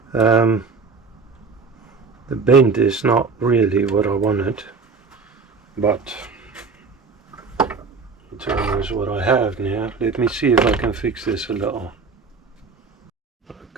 The bend is not really what I wanted, but it's almost what I have now. Let me see if I can fix this a little.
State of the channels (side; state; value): left; quieter; 4.7 dB